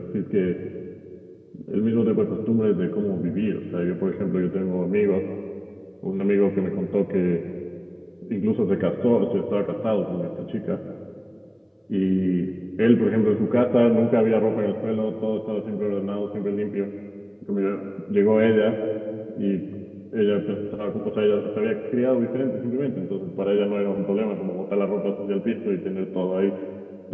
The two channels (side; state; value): both; identical; correlation 1.00